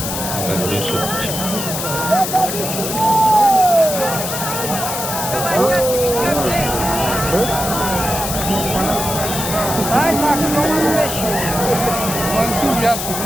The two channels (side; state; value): left; noise; hiss, 4 dB below the sound